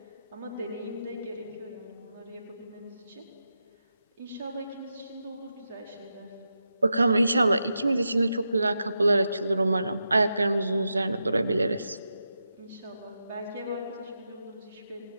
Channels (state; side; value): inverted; both; correlation -0.88